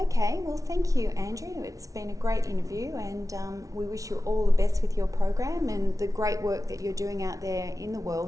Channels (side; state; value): left; late; 0.17 ms